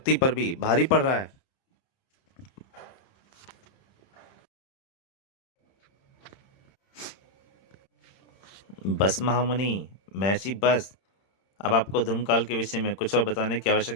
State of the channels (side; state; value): right; late; 31 ms